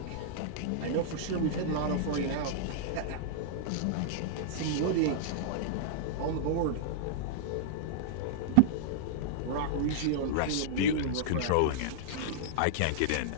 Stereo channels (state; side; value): different; both; correlation -0.02